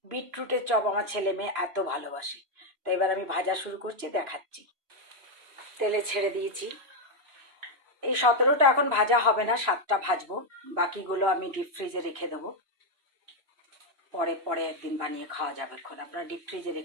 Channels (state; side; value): late; left; 2.9 ms